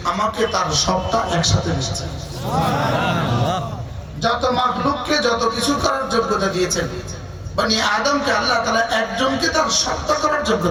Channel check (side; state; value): both; identical; correlation 1.00